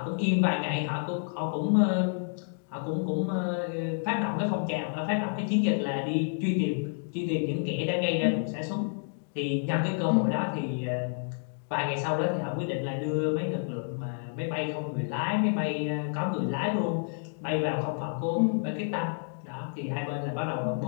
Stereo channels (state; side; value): silent; right; digital silence